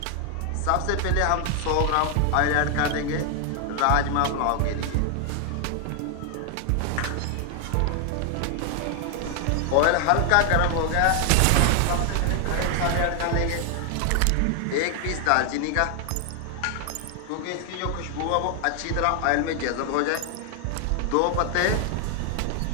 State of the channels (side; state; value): both; different; correlation 0.00